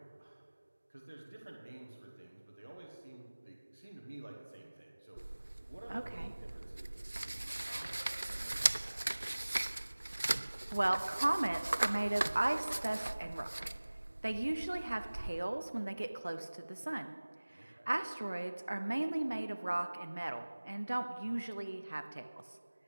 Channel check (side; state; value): both; inverted; correlation -1.00